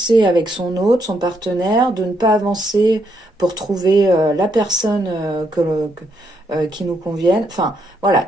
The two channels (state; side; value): normal; both; correlation 0.76